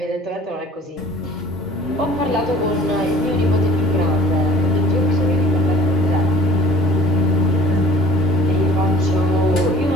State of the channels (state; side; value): normal; both; correlation 0.49